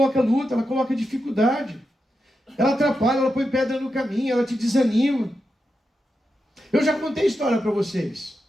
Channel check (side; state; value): both; normal; correlation 0.88